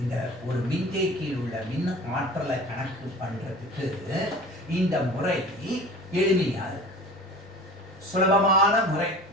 இந்த ஒரு மின்தேக்கியில் உள்ள மின் ஆற்றலை கணக்கு பண்றதுக்கு இந்த முறை எளிமையா இருக்கு. சுலபமான முறை,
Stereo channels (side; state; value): right; noise; rumble, 29 dB below the sound